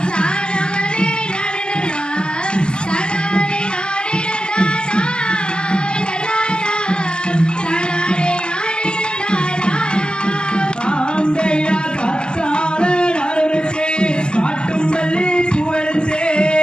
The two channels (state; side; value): late; right; 0.048 ms